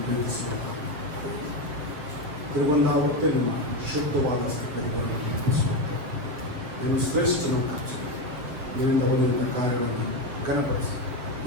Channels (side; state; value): left; late; 7.2 ms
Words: ಪ್ರೀತಿಸುವ ತಿರುಗೊಂಡ ಹೊತ್ತೆ ನಿಮ್ಮ ಶುದ್ಧವಾದ ಸ್ಥಿತಿಗಳನ್ನು ನೆನಪಿಸುವಂತೆ ನೀನು ಶ್ರೇಷ್ಠನಂತ ನಿನ್ನಿಂದ ಹೊಂದಿದ ಕಾರ್ಯಗಳನ್ನು ಘನಪಡಿಸಿ